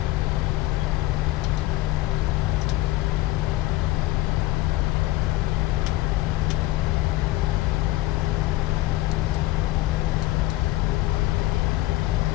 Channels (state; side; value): quieter; right; 17.3 dB